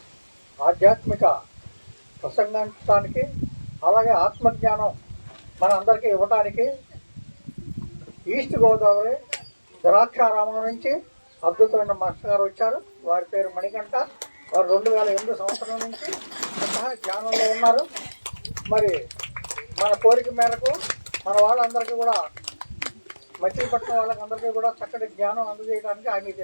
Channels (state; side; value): inverted; both; correlation -1.00